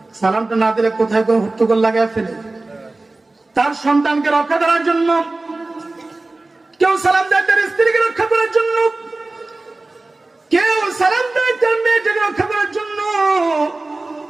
সালামটা না দিলে কোথায় কোনো হট্টগোল লাগায় ফেলে। তার সন্তানকে রক্ষা করার জন্য কেউ সালাম দেয়, তার স্ত্রীকে রক্ষা করার জন্য কেউ সালাম দেয়, তার মেয়েটাকে রক্ষা করার জন্য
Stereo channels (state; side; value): quieter; left; 3.1 dB